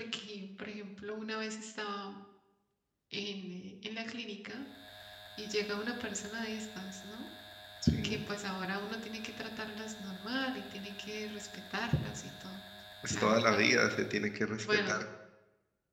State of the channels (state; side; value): identical; both; correlation 1.00